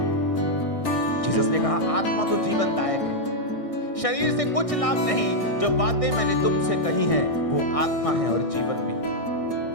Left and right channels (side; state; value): right; late; 1.6 ms